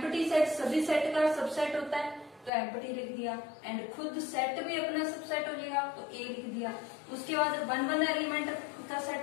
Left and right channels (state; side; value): drops out; right; at 2.5 s